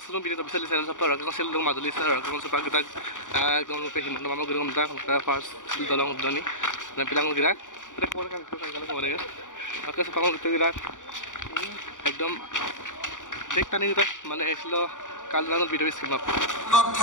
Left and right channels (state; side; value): late; right; 0.87 ms